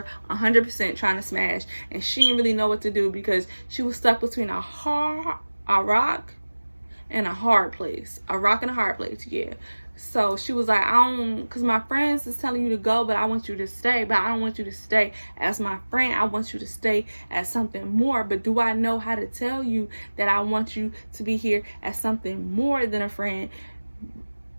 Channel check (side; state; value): both; inverted; correlation -1.00